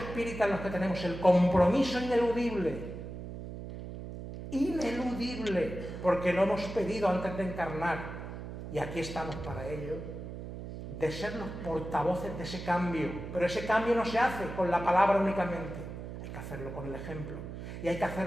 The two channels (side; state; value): right; noise; hum, 9 dB below the sound